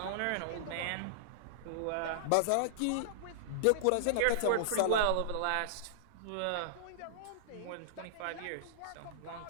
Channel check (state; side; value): different; both; correlation -0.01